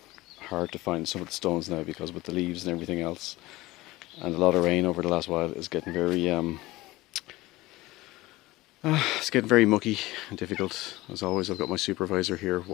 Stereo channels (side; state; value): right; quieter; 19.2 dB